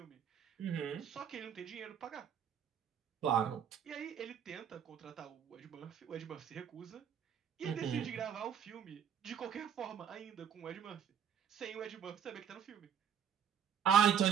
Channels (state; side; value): quieter; left; 8.3 dB